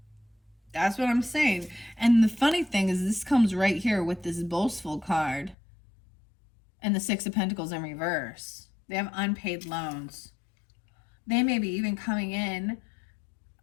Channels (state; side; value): drops out; right; at 5.6 s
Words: That's what I'm saying. And the funny thing is, this comes right here with this boastful card and the Six of Pentacles in reverse. They have unpaid loans. They may be even coming in